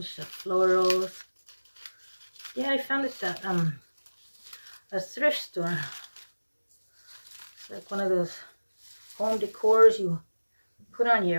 the florals. Yeah, I found this at a thrift store. It's like one of those home decors you put on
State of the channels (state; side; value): inverted; both; correlation -1.00